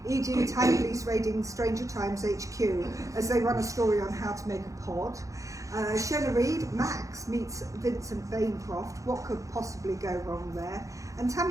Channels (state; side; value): late; left; 0.16 ms